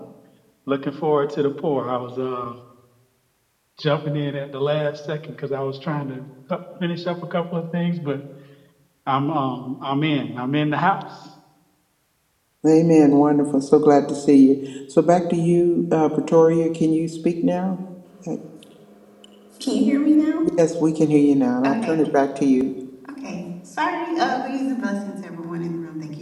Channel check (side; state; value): both; identical; correlation 1.00